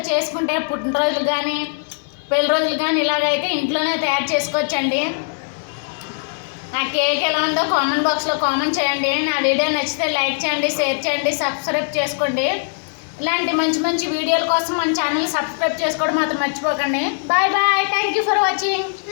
చేసుకుంటే పుట్టినరోజులు కానీ పెళ్లి రోజులు కానీ ఇలాగైతే ఇంట్లోనే తయారు చేసుకోవచ్చండి. నా కేక్ ఎలా ఉందో కామెంట్ బాక్స్లో కామెంట్ చేయండి. నా వీడియో నచ్చితే లైక్ చేయండి, షేర్ చేయండి, సబ్స్క్రైబ్ చేసుకోండి. ఇలాంటి మంచి మంచి వీడియోల కోసం మన ఛానల్ సబ్స్క్రైబ్ చేసుకోవడం మాత్రం మర్చిపోకండి. Bye bye. Thank you for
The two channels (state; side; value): silent; right; 66 dB below the other